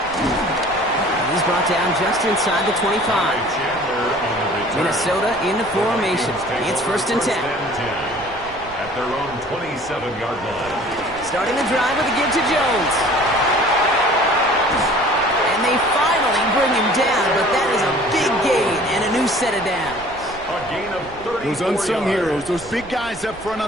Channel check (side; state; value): right; noise; rumble, 20 dB below the sound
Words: He's brought down just inside the 25. Minnesota in the formation. It's 1st and 10. At their own 27-yard line. Starting the drive with a give to Jones. And they finally bring him down, but that is a big gain and a new set of downs. A gain of 34 Those unsung yards. heroes, those big guys up front